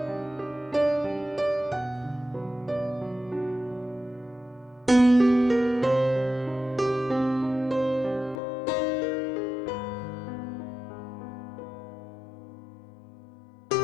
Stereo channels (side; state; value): right; drops out; at 8.3 s